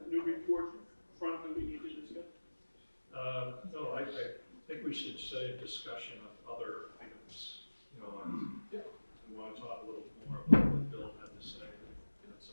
new report front that we need to discuss? No, I think we should say a discussion of other items. You know, we want to talk a little more about what Bill had to say, and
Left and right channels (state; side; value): inverted; both; correlation -1.00